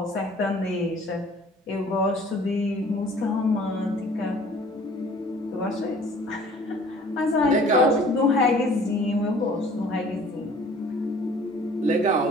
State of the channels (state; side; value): normal; both; correlation 0.51